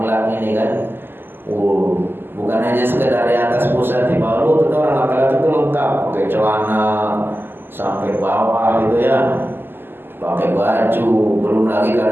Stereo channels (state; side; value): late; left; 0.099 ms